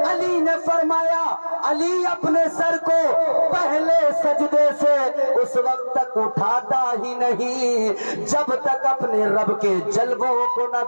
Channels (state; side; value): inverted; both; correlation -1.00